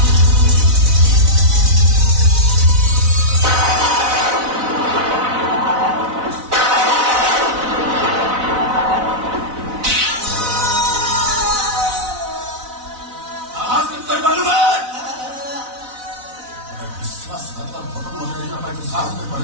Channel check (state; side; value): late; left; 4.0 ms